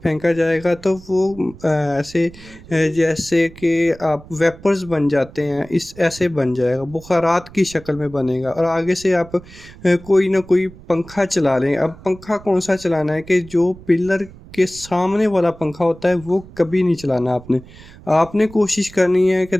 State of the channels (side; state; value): right; noise; rumble, 20 dB below the sound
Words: फेंका जाएगा तो वो जैसे कि आप वेपर्स बन जाते हैं, इस ऐसे बन जाएगा, बुखारात की शक्ल में बनेगा। और आगे से आप कोई ना कोई पंखा चला लें। अब पंखा कौन सा चलाना है कि जो पिलर के सामने वाला पंखा होता है वो कभी नहीं चलाना आपने। आपने कोशिश करनी है कि